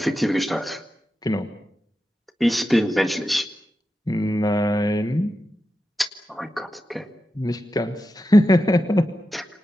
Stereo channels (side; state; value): both; normal; correlation 0.90